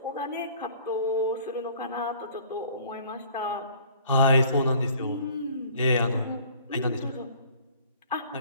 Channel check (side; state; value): both; inverted; correlation -0.52